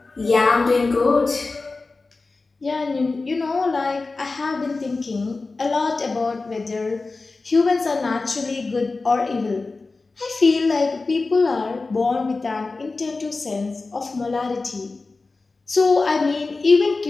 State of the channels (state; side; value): quieter; right; 3.7 dB